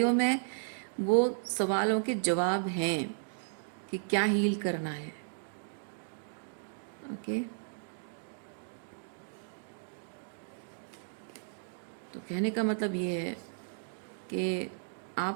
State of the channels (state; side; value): silent; left; digital silence